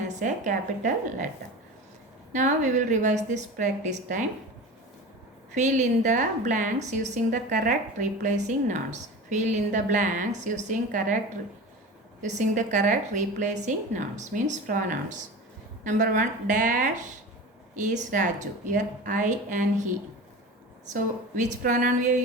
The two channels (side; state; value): both; normal; correlation 0.32